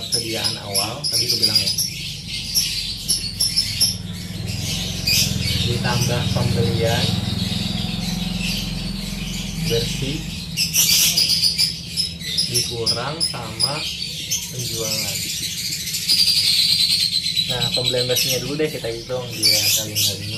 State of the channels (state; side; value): identical; both; correlation 1.00